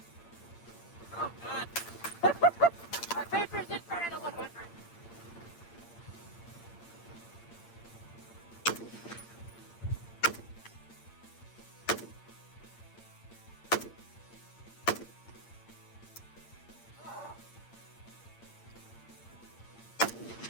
Oh, God. Our paper's in front of the 100.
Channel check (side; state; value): right; late; 8.7 ms